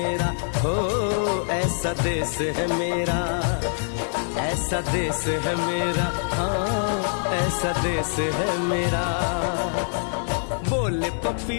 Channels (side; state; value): right; silent; 60 dB below the other